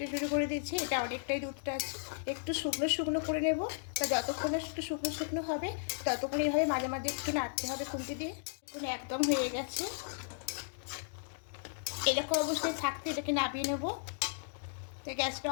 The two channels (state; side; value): silent; right; digital silence